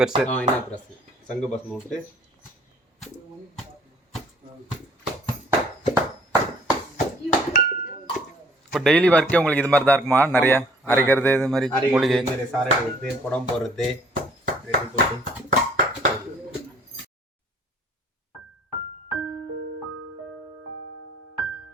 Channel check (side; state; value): both; normal; correlation 0.57